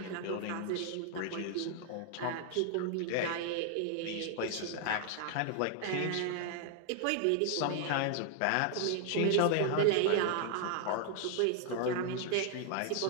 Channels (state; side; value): different; both; correlation 0.00